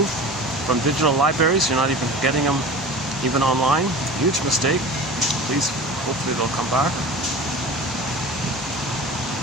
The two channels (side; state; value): both; normal; correlation 0.36